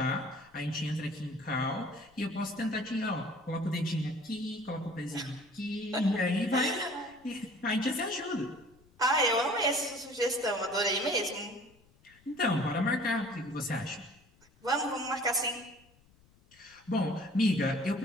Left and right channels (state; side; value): noise; left; rumble, 30 dB below the sound